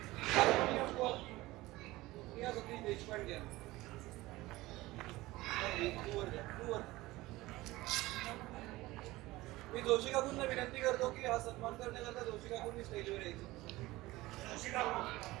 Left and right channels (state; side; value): quieter; left; 19.0 dB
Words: सतीश देशपांडे. मी जोशी काकूंना विनंती करतो की हा सन्मान करण्याकरता जोशी काकूंनी स्टेजवर यायचं.